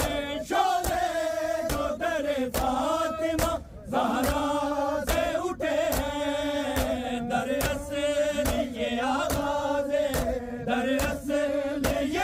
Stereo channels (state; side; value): identical; both; correlation 1.00